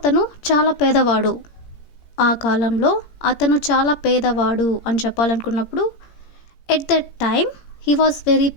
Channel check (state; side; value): late; right; 17 ms